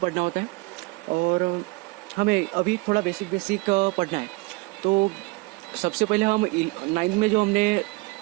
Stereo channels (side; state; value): left; quieter; 25.1 dB